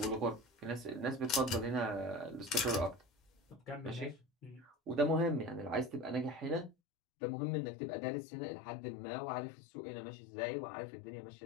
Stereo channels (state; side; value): drops out; right; at 6.8 s